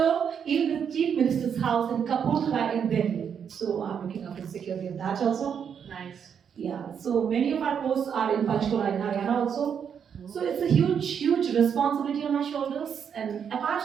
even the Chief Minister's house in Kapurthala in Delhi, so I'm looking after the security of that also. Nice. Yeah, so many of our posts are in Panchkula in Haryana also. So it's a huge, huge responsibility on my shoulders. And apart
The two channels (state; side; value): quieter; left; 7.6 dB